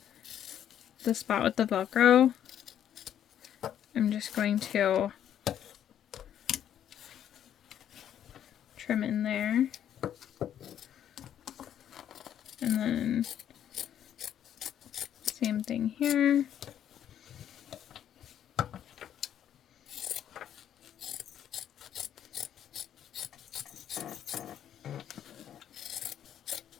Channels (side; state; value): right; quieter; 10.0 dB